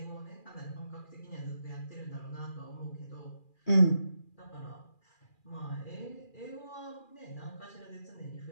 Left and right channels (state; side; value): late; right; 2.4 ms